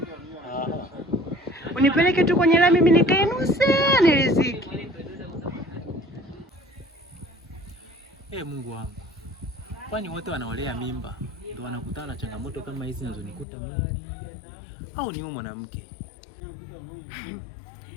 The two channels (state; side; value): drops out; right; at 13.5 s